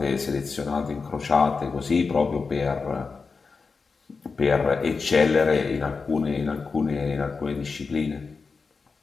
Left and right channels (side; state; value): right; quieter; 4.7 dB